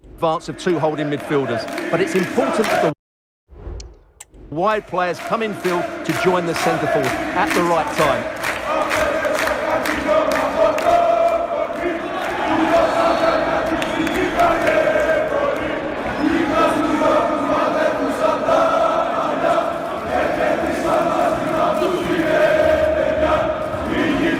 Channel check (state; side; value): identical; both; correlation 1.00